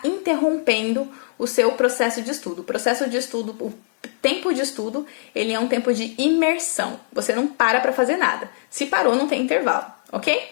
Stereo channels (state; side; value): silent; right; 64 dB below the other